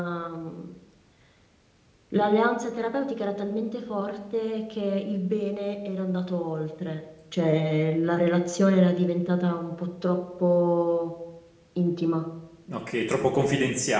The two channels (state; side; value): identical; both; correlation 1.00